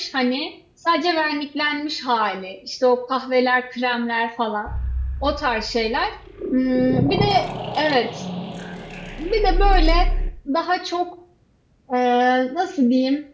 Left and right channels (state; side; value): identical; both; correlation 1.00